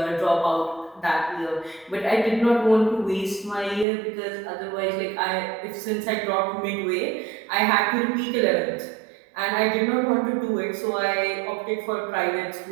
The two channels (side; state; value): left; drops out; at 3.9 s